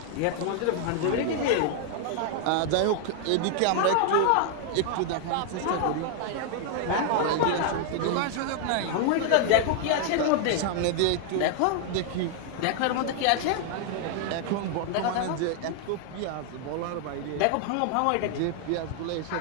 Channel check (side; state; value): both; different; correlation 0.00